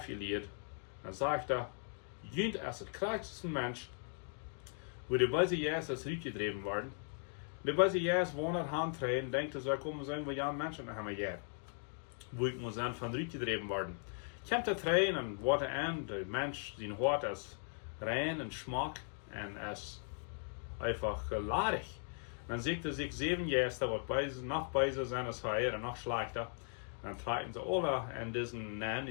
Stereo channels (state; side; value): silent; right; 52 dB below the other